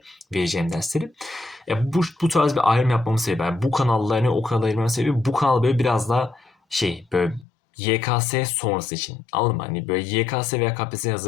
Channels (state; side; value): drops out; right; at 7.5 s